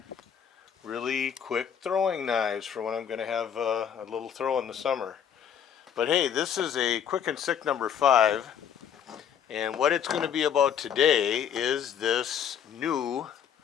really quick throwing knives for when I'm going to have a little throw in the summer. But hey, this is a Quick and Sick number 5. And what it's going to be about today is this new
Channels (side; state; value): right; quieter; 8.5 dB